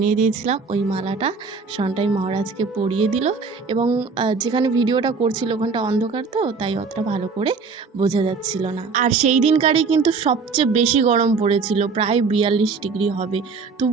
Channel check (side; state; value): left; quieter; 4.8 dB